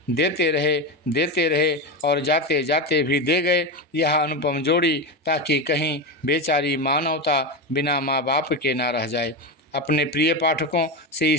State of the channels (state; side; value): normal; both; correlation 0.15